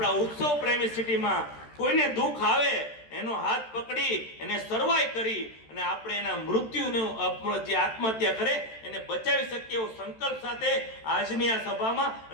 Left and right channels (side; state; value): right; late; 13 ms